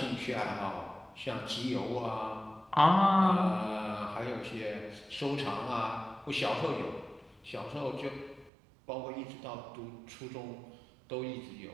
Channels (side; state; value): left; drops out; at 8.5 s